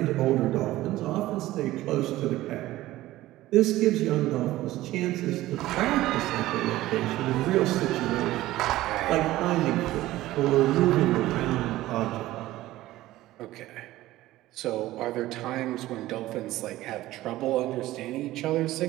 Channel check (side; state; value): left; quieter; 16.2 dB